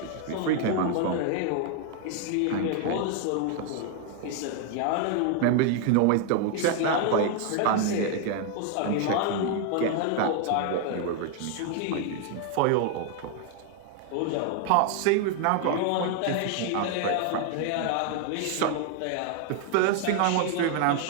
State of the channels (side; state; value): both; different; correlation 0.00